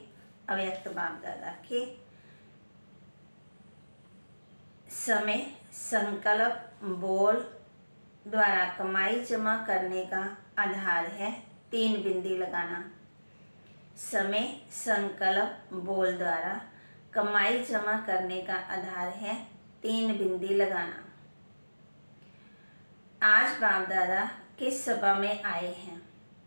अव्यक्त बाप दादा के समय संकल्प बोल द्वारा कमाई जमा करने का आधार है 3 बिंदी लगाना। समय संकल्प बोल द्वारा कमाई जमा करने का आधार है 3 बिंदी लगाना। आज बाप दादा किस सभा में आए हैं?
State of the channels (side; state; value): both; inverted; correlation -1.00